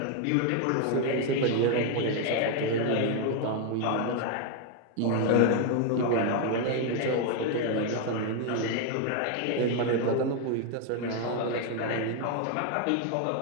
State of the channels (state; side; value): different; both; correlation 0.01